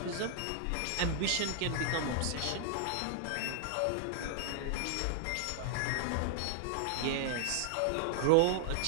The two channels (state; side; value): different; both; correlation 0.00